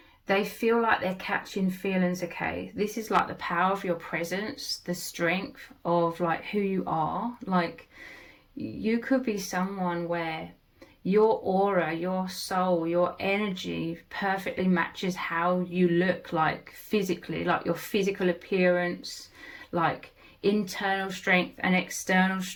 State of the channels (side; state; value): both; identical; correlation 1.00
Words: they feel like they're catching feelings, okay? This is like the power of your presence, the strength of like who you are. Like, you could be someone where your aura, your soul, your energy perfectly matches how you look, like physically, like your physical appearance, like internal strength and external